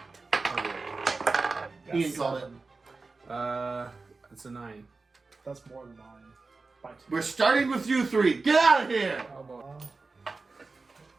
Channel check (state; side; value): quieter; left; 3.9 dB